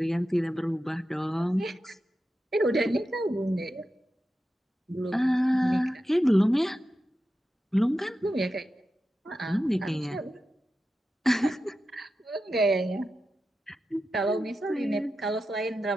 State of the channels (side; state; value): both; normal; correlation 0.91